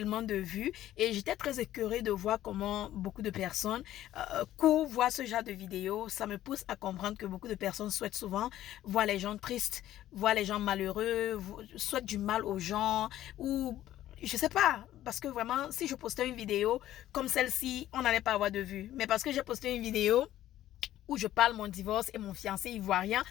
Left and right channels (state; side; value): quieter; right; 13.3 dB